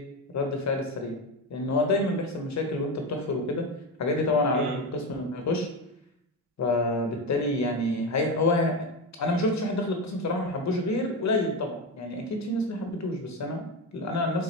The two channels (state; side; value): normal; both; correlation 0.17